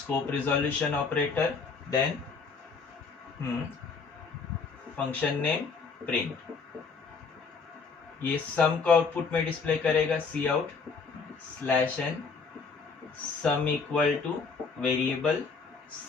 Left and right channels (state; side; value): quieter; right; 4.9 dB